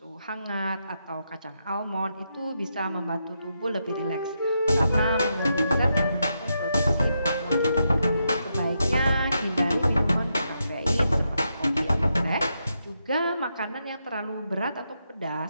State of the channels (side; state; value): both; inverted; correlation -0.83